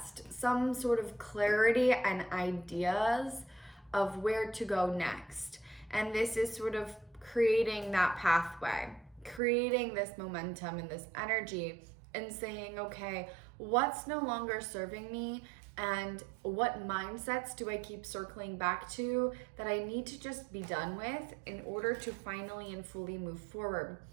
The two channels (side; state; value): left; drops out; at 9.4 s